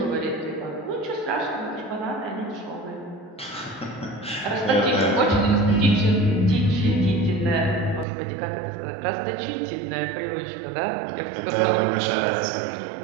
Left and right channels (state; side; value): drops out; left; at 8.1 s